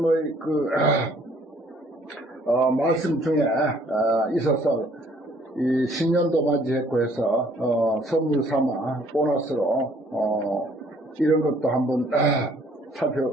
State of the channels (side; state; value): both; normal; correlation 0.61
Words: 말씀 중에 있어서 이 신년도 맞이했고 해서 선물 삼아 보너스로 이런 것도 한번